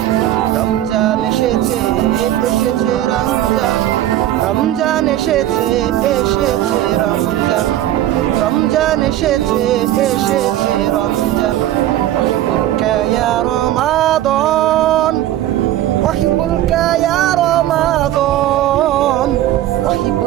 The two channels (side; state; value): left; quieter; 13.3 dB